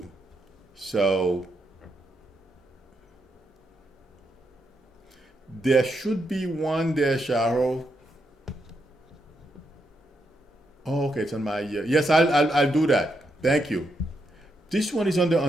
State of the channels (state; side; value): normal; both; correlation 0.81